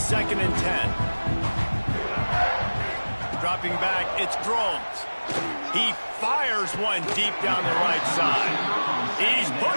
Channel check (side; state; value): both; inverted; correlation -1.00